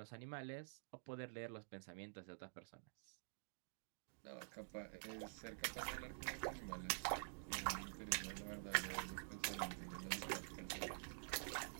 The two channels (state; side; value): silent; left; digital silence